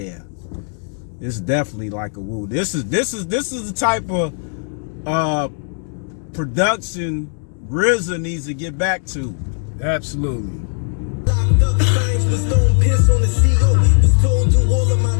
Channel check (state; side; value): silent; right; 58 dB below the other